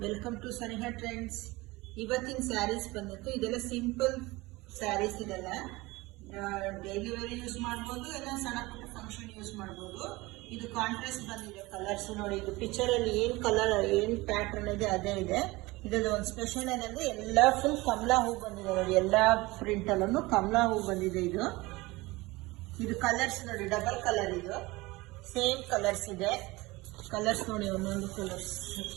welcome to Saniha trends. ಇವತ್ತಿನ ಸ್ಯಾರೀಸ್ ಬಂದಿತ್ತು. ಇದೆಲ್ಲ ಸಿಂಪಲ್ ಸ್ಯಾರೀಸ್. ಇದೆಲ್ಲ ಡೈಲಿ ವೇರ್ ಯೂಸ್ ಮಾಡ್ಬೋದು, ಎಲ್ಲ ಸಣ್ಣ ಪುಟ್ಟ ಫಂಕ್ಷನ್ ಯೂಸ್ ಮಾಡ್ಬೋದು. ಇದು ಕಾಂಟ್ರಾಸ್ಟ್ ಬಂದಿದೆ ಕಲರ್ಸ್ ನೋಡಿ. ಇದು ಪಿಕ್ಚರ್ ಅಲ್ಲಿ ಏನ್ ಕಲರ್ ಏನ್ ಪ್ಯಾಟರ್ನ್ ಇದೆ ಅದೇ ಇದೆ. ಇದ್ರಲ್ಲಿ ಒಂದು ಸ್ಪೆಷಲ್ ಏನಂದ್ರೆ ಎಲ್ಲ ಫುಲ್ ಕಮಲಾ ಹೂ ಬಂದಿದೆ ನೋಡಿ. ಎಲ್ಲಾ ಪ್ರಿಂಟ್ ಅಲ್ಲೂ ಕಮಲಾ ಹೂ ಬಂದಿದೆ. ಇದು ಕಲರ್ಸ್ ನೋಡಿ, ಡಬಲ್ ಕಲರ್. ಇದು ಸೇಮ್ ಕಲರ್ಸ್ ಇದೆ. ಕಲರ್ಸ್ ನೋಡಿ, ಒಂದೊಂದು ಕಲರ್ಸ್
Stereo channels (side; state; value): left; quieter; 21.5 dB